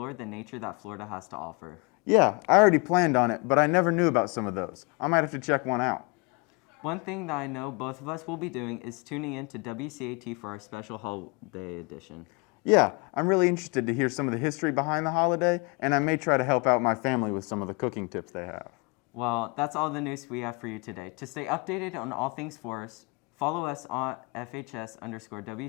the nature that Florida has to offer. Yeah, I already planned on it, but I never knew about some of those. I might have to check one out. One thing that I know both of us will be doing is tuning in to WCAT for our special holiday edition. Yeah, I'm really interested to hear some of the history behind the holiday, and I may try to help out my family with some of the cooking tips they have. Well, that's all the news we have for you today. To stay updated on all things forest, follow us on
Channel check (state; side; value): quieter; right; 30.1 dB